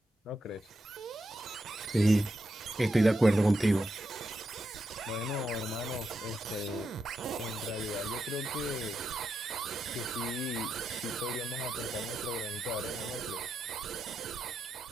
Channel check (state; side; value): normal; both; correlation 0.85